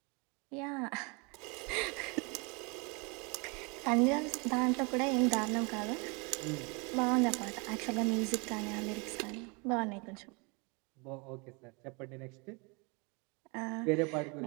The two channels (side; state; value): left; quieter; 30.7 dB